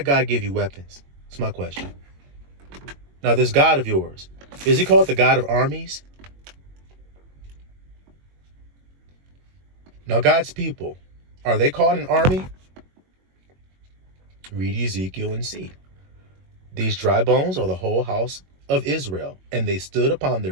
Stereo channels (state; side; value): late; left; 22 ms